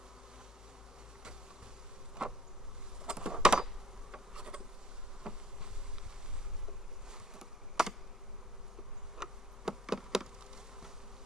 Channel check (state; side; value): normal; both; correlation 0.56